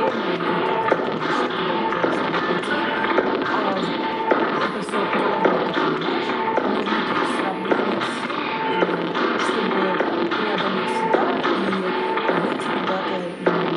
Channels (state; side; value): identical; both; correlation 1.00